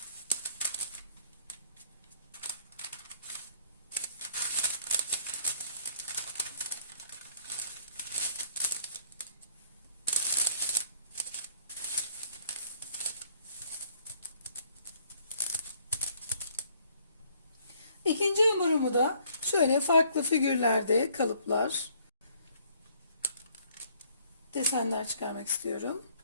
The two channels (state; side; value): inverted; both; correlation -0.63